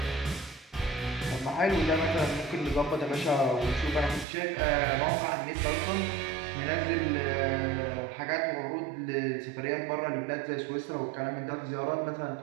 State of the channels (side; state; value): left; drops out; at 4.2 s